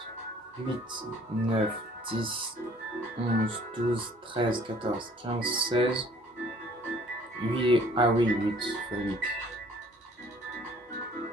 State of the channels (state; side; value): normal; both; correlation 0.55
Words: 8, 9, 10, 11, 12, 13, 14, 15, 16. 8. Ah oui, 8 fois 8.